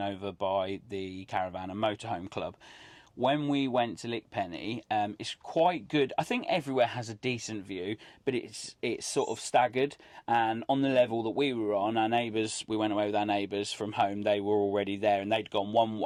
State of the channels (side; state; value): both; identical; correlation 1.00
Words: over by the Caravan and Motorhome Club. When we went to Lickpenny, it's quite good. I think everywhere has a decent view, but it's sort of staggered. And on the level that we were on, our neighbours, we went away with our neighbours from home. They were already there, and they'd gone one